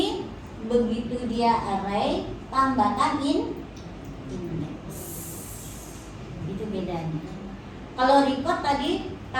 begitu dia array, tambahkan index. Itu bedanya. Kalau record tadi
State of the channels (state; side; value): identical; both; correlation 1.00